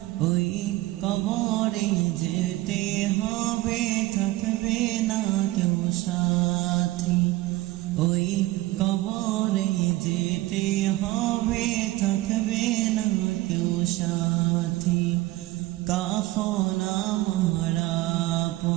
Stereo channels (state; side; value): quieter; left; 18.1 dB